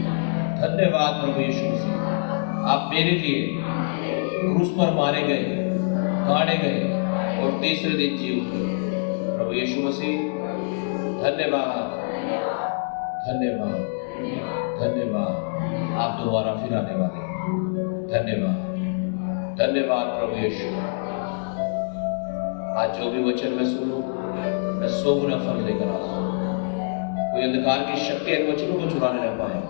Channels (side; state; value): right; silent; digital silence